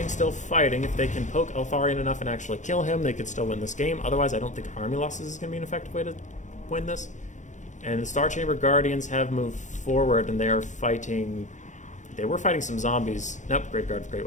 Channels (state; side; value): late; right; 0.35 ms